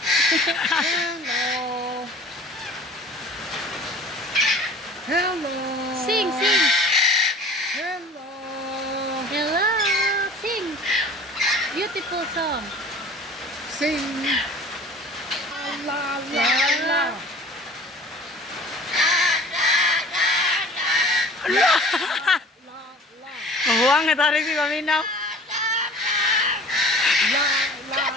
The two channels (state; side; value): normal; both; correlation 0.45